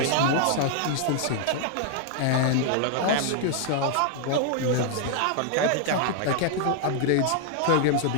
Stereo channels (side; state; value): both; different; correlation 0.00